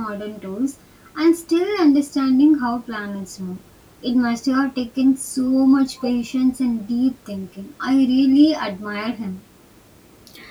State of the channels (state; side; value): identical; both; correlation 1.00